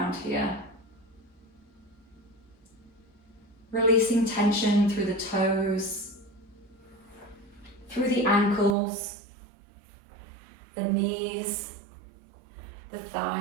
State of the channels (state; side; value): drops out; left; at 8.8 s